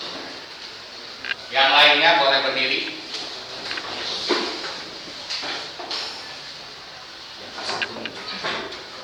Yang lainnya boleh berdiri.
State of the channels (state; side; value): identical; both; correlation 1.00